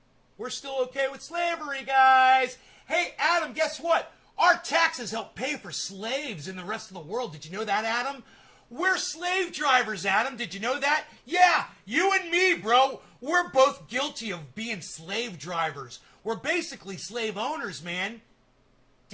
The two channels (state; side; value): identical; both; correlation 1.00